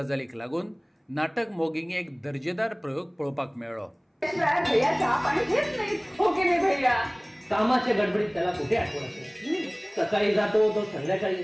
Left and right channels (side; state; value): both; identical; correlation 1.00